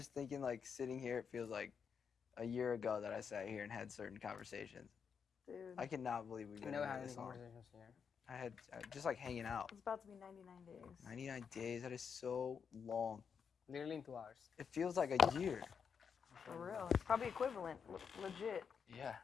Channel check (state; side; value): quieter; right; 6.6 dB